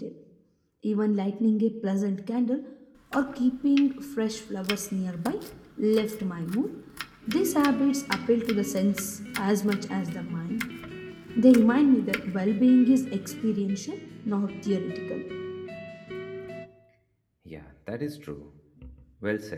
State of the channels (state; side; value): identical; both; correlation 1.00